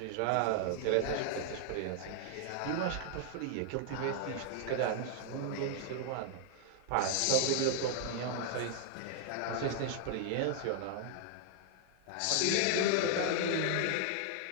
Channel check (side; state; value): both; different; correlation 0.00